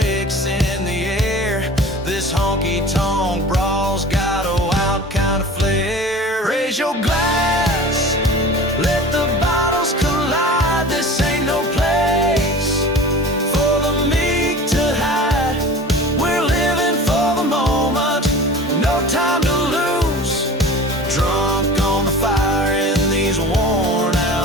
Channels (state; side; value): normal; both; correlation 0.39